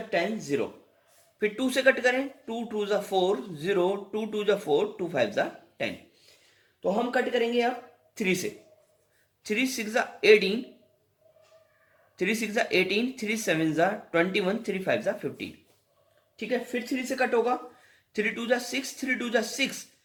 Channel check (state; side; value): identical; both; correlation 1.00